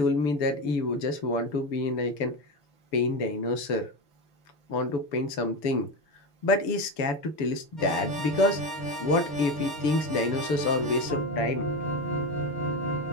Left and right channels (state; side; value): late; right; 6.9 ms